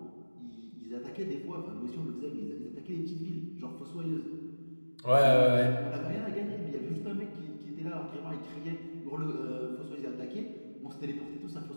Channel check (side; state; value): both; inverted; correlation -1.00